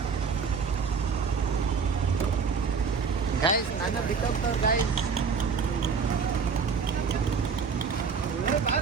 ಗೈಸ್, ನನ್ನ ಬಿಟ್ಟೋಗ್ತವ್ರು ಗೈಸ್.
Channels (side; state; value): left; quieter; 5.6 dB